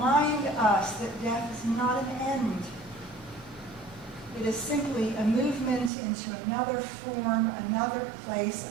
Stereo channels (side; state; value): left; drops out; at 5.9 s